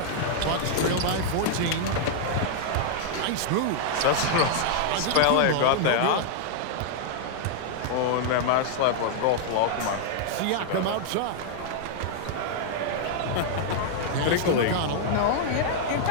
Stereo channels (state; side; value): different; both; correlation -0.01